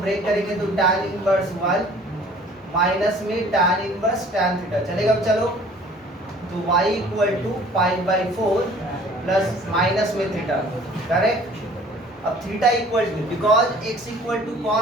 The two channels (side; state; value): both; normal; correlation 0.52